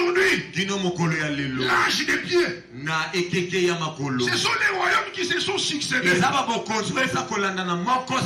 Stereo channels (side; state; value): both; identical; correlation 1.00